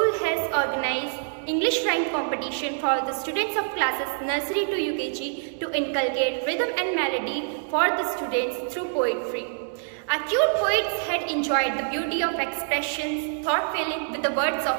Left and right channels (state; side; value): silent; left; 59 dB below the other